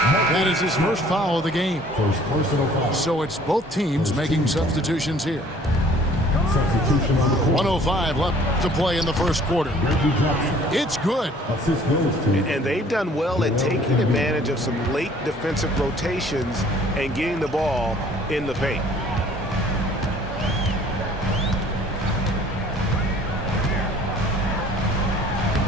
is his first foul of the game. First personal foul. So it's both teams making substitutions here. 1:05 left to play in the first quarter. It's good. And they've done well at taking advantage of some late defensive rotations and getting the ball in the paint.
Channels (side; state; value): both; normal; correlation 0.54